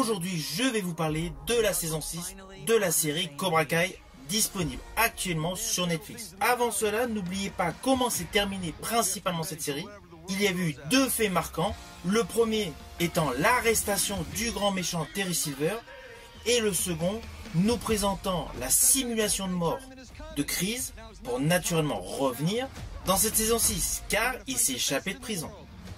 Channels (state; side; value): identical; both; correlation 1.00